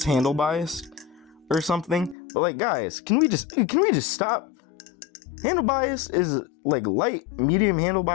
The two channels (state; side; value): drops out; right; at 2.1 s